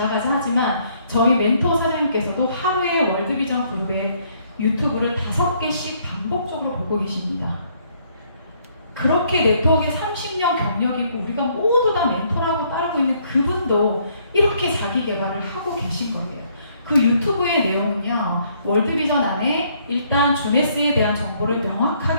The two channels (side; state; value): both; inverted; correlation -0.67